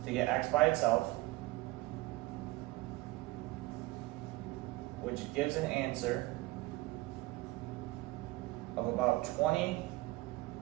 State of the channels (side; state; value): left; quieter; 20.2 dB